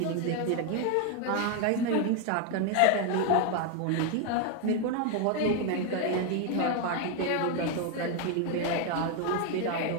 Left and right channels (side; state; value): both; different; correlation 0.01